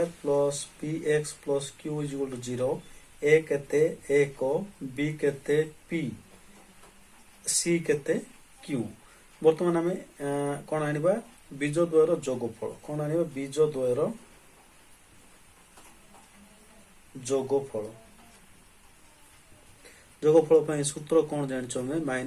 plus p x plus q is equal to 0। A केते एक, बी केते पी, सी केते क्यू। बर्तमान आम कौन आनिबा बीज द्वयर जोगफल। कौन आनिबा बीज द्वयर जोगफल। जोगफल सूत्र कौन जानिछो हमें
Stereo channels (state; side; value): identical; both; correlation 1.00